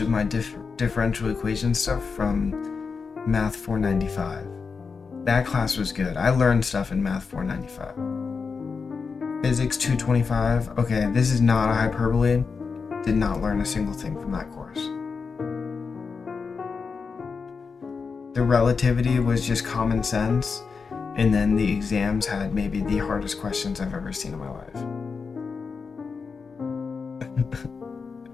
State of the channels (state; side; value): quieter; right; 5.1 dB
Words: of my differential equation stuff from Math 495. That class was good. I learned stuff in Math 495. Physics 225. Okay, this is not a hyperbole. Did not learn a single thing from that course. The relativity was just common sense, and then the exams had maybe the hardest questions I've ever seen in my life.